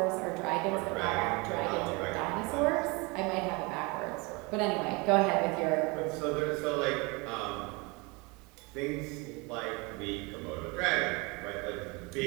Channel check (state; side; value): quieter; left; 27.5 dB